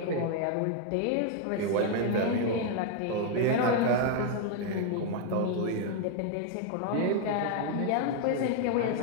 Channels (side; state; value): both; different; correlation 0.00